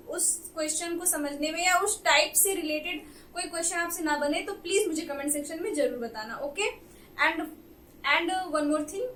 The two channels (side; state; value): both; identical; correlation 1.00